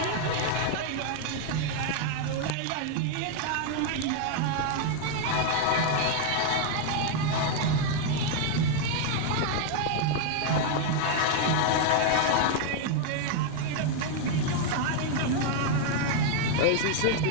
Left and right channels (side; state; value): both; different; correlation 0.00